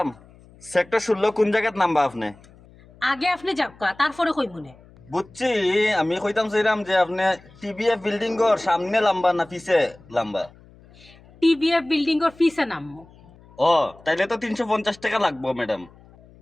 সেক্টর 16 কোন জায়গাত নামবা আপনি? আগে আপনি যাবকা তারপরে কই মনে। বুঝছি, আমি কইতাম চাইলাম যে আপনি টিবিএফ বিল্ডিং এর সামনে লম্বা না পিছে লম্বা? টিভিএফ বিল্ডিং এর ফিসে নামবো। ও তাইলে তো 350 টাকা লাগবো ম্যাডাম।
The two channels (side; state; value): left; noise; hum, 25 dB below the sound